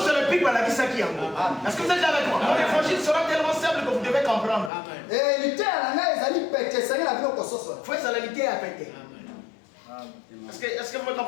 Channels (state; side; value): drops out; right; at 4.7 s